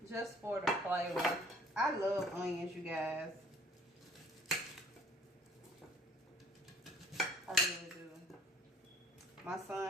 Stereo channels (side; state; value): both; normal; correlation 0.54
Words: Just for the flavor. I love onions, you guys. I really do. My